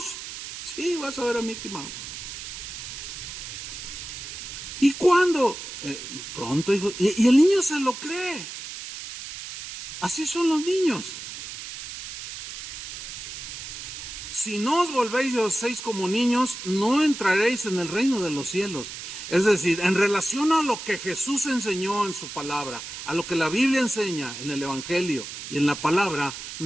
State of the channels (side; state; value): right; noise; hiss, 9 dB below the sound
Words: Sí, vas a ver a Mickey Mouse. ¿Y cuándo? Pronto, hijo. Y el niño se lo cree. Así son los niños. Si no os volvéis y os hacéis como niños, no entraréis en el reino de los cielos. Es decir, en relación a lo que Jesús enseñó en su palabra, a lo que la Biblia enseña en el Evangelio y en la palabra,